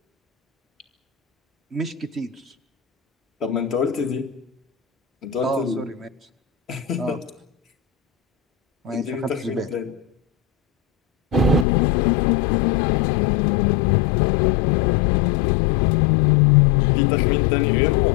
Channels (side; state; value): right; drops out; at 11.7 s